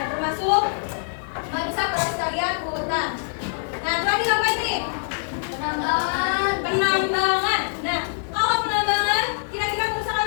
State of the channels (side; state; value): right; silent; digital silence